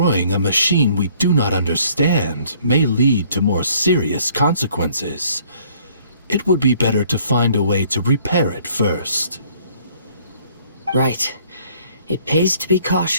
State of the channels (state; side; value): inverted; both; correlation -0.60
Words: a machine we do not understand may lead to more serious consequences. It would be better to find a way to repair it first. Right. It pays to be